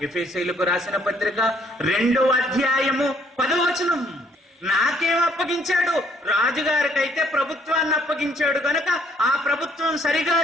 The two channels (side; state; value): both; normal; correlation 0.65